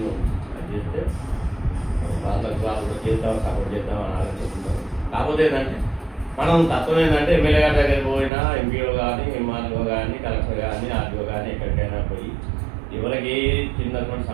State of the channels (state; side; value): drops out; left; at 8.3 s